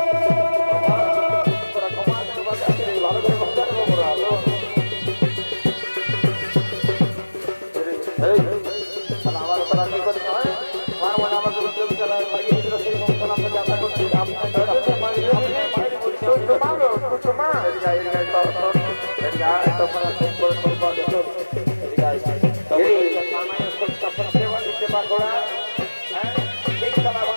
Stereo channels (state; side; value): inverted; both; correlation -1.00